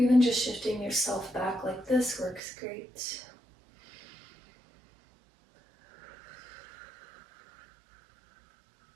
even just shifting yourself back like this works great.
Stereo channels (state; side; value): drops out; left; at 2.4 s